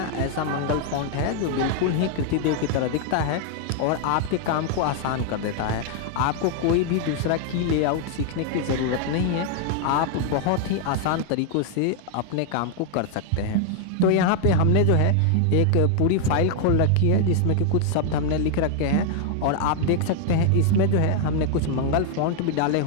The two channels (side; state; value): both; different; correlation 0.00